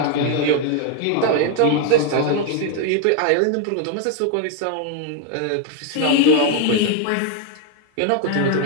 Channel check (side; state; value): both; different; correlation 0.00